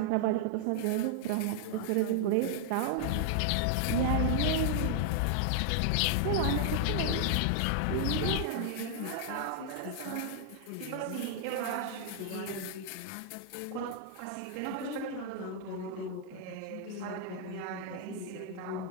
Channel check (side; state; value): both; different; correlation -0.01